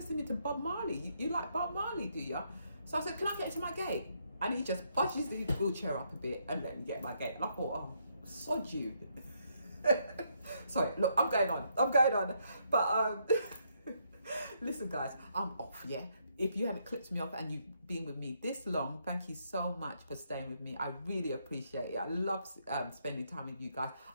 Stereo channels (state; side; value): inverted; both; correlation -0.75